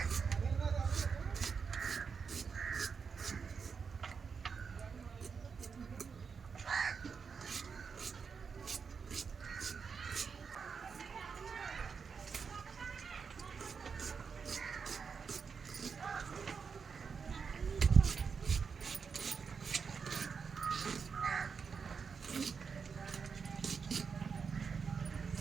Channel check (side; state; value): left; quieter; 5.8 dB